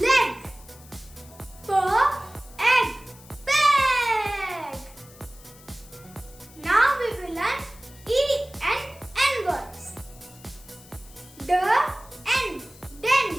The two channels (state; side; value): noise; left; hiss, 22 dB below the sound